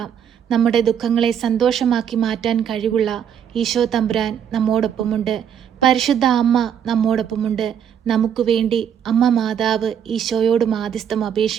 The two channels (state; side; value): quieter; left; 8.6 dB